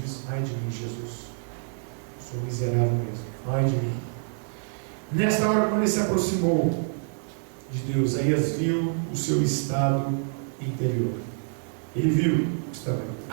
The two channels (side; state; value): left; silent; digital silence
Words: diz: ai de mim, Jesus, sou miserável mesmo, ai de mim. Nesta hora, quando ele se aproximou de Deus, Isaías viu o seu estado interior. Ele viu, estava